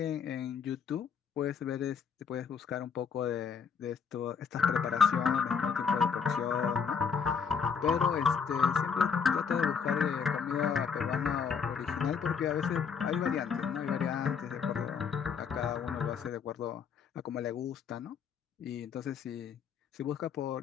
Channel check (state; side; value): quieter; right; 6.5 dB